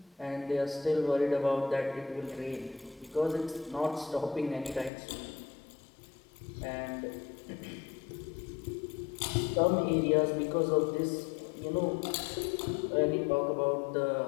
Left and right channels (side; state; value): right; drops out; at 4.9 s